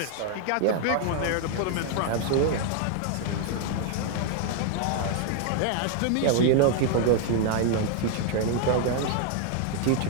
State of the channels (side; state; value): both; different; correlation 0.00